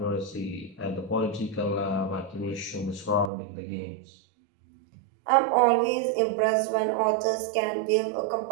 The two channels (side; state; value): left; drops out; at 3.3 s